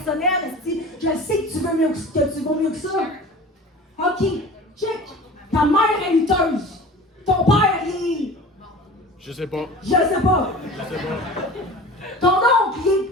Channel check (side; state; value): both; normal; correlation 0.39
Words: Esti. Je sais que tu veux mieux que vaux mieux que ça. OK, check. Ta mère est lutteuse. Ton père, il est... Je sais pas. Je sais pas. Ton oncle, il est...